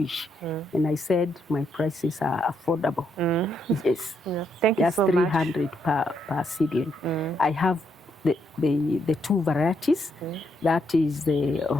And I said my prices are affordable. Yes. Thank you so much. Just 300 per seedling. I have the two varieties. That is the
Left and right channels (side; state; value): both; normal; correlation 0.77